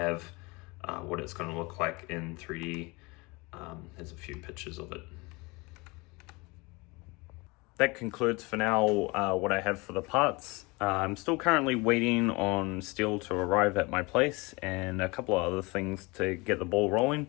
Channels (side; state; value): right; quieter; 25.6 dB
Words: what it's going to look like in 3D. There's a few pictures of it. That concludes for now what I have for the parts. I'm still currently waiting on steel to arrive at my place and a couple of other things to get the ball rolling.